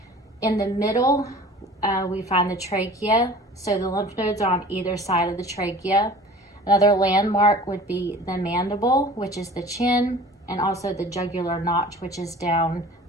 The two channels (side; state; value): both; normal; correlation 0.44